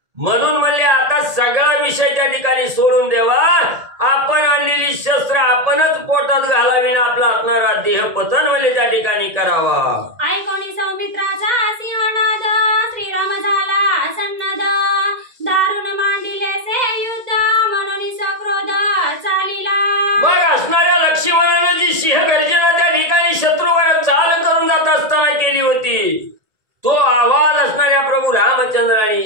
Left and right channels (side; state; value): left; late; 1.8 ms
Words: म्हणून म्हणले आता सगळा विषय त्या ठिकाणी सोडून देवा, आपण आणलेली शस्त्र आपणच पोटात घालावी ना आपला असणारा देह पतन म्हणजे त्या ठिकाणी करावा. ऐकोनी सौमित्राचा सिंहनाद, श्रीराम झाला सन्नद, दारुण मांडिले से युद्ध, म्हणून सक्रोध चालिला. मग असणाऱ्या लक्ष्मणानं जी सिंहगर्जना त्या ठिकाणी शत्रूवर चाल करून जात असताना केली होती, तो आवाज असणाऱ्या प्रभू